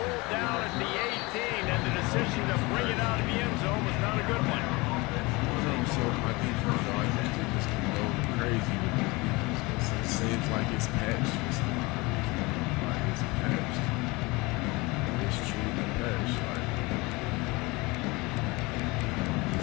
down at the 18, and the decision to bring it out of the end zone was not a good one. So my defense, I used to just go crazy with this defense. It seems like it's patched. Like it's patched. It's truly patched. Like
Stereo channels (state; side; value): quieter; right; 24.2 dB